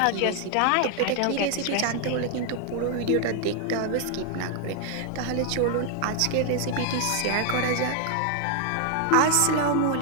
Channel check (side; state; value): both; different; correlation 0.00